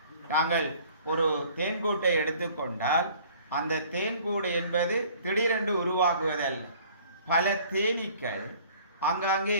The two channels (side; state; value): both; inverted; correlation -0.53